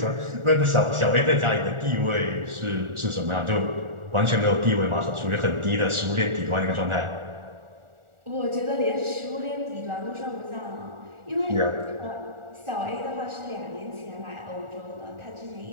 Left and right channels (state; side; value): late; left; 1.4 ms